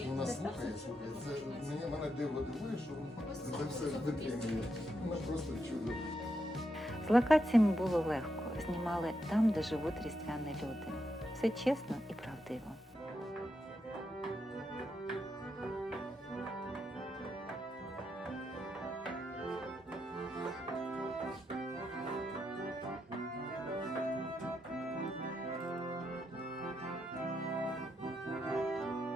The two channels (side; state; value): both; normal; correlation 0.82